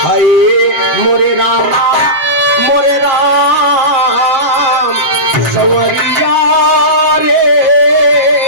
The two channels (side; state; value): left; late; 7.4 ms